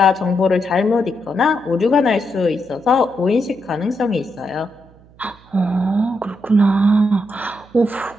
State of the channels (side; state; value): right; noise; hum, 26 dB below the sound